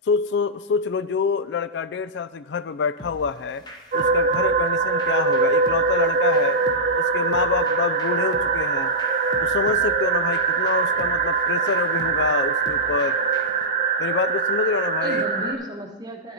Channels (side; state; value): both; normal; correlation -0.11